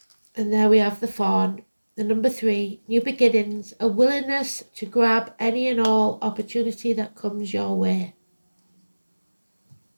And there we have the fawn. The number 3, new beginnings, a willingness to grab any and all opportunity that comes your way.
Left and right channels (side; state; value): both; inverted; correlation -1.00